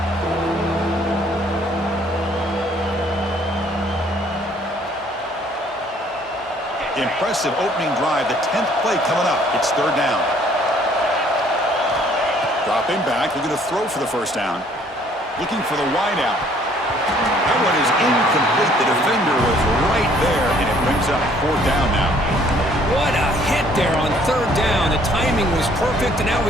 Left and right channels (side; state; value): both; normal; correlation 0.61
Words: Impressive opening drive, the 10th play coming up. It's third down. Dropping back, looking to throw for the first down. Looking for the wide out. That one is incomplete. The defender was right there, and it brings up fourth down now. What a hit there on third down. The timing was perfect, and now